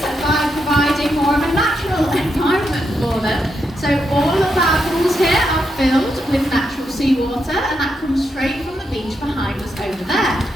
by providing more of a natural environment for them. So all of our pools here are filled with natural seawater, and that comes straight from the beach behind us over there.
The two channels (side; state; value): both; normal; correlation 0.82